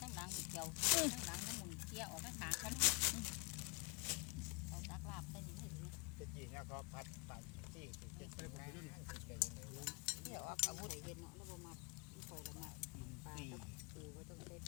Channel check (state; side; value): quieter; right; 30.1 dB